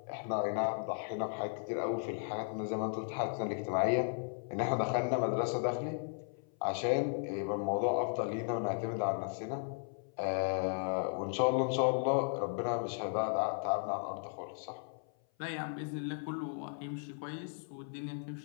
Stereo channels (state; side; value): silent; right; 54 dB below the other